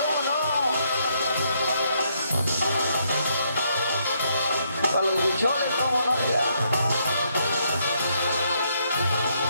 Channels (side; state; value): both; inverted; correlation -0.74